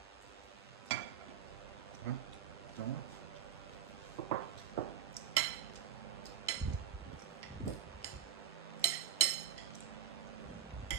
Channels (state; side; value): quieter; left; 10.1 dB